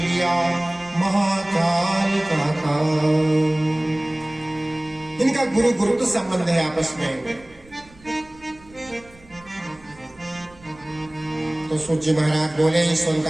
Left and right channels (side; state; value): right; noise; rumble, 25 dB below the sound